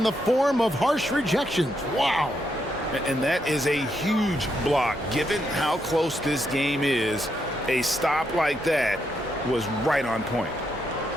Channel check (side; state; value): both; normal; correlation 0.80